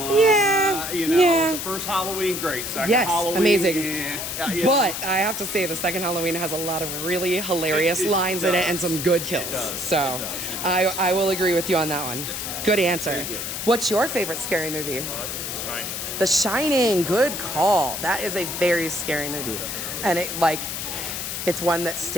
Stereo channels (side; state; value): left; noise; hiss, 5 dB below the sound